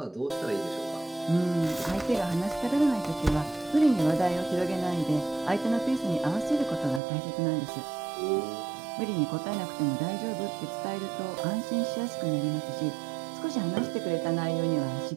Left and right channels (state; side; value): drops out; left; at 7.0 s